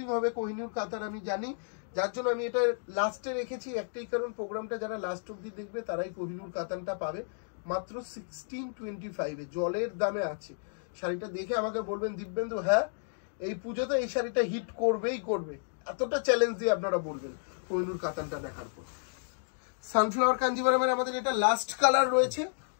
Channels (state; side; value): silent; right; digital silence